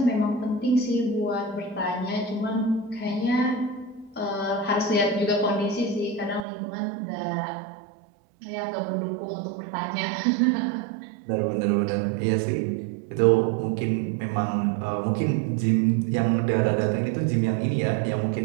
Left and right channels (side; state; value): left; drops out; at 6.5 s